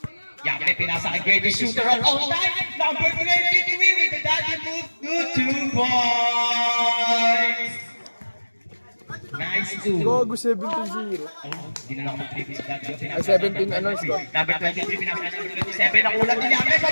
Yape, pinasa kay greatest shooter of all time. Number 23 with the daddy move to 2 points. Nice 2. Gogo 17-0. Hindi na lang mag-trip sa daddy. Ay, 17 ano score? Number 23, pinasa number 27. Nakulang ni Yape.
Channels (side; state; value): both; inverted; correlation -1.00